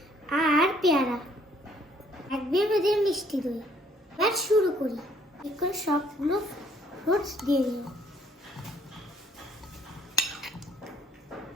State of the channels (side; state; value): both; normal; correlation 0.63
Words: আর পেয়ারা, এক বেদের মিষ্টি দই। এবার শুরু করি। এখন সবগুলো ফ্রুটস দিয়ে দিই।